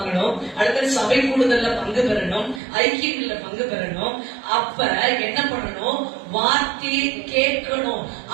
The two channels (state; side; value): drops out; left; at 2.6 s